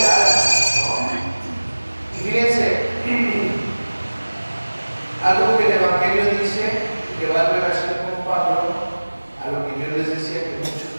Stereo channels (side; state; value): both; inverted; correlation -1.00